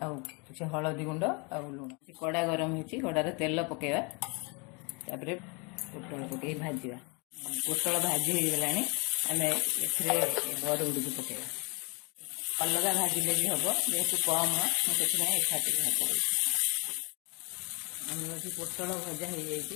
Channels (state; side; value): quieter; right; 31.3 dB